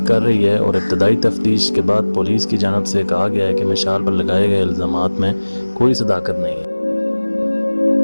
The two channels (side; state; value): both; inverted; correlation -1.00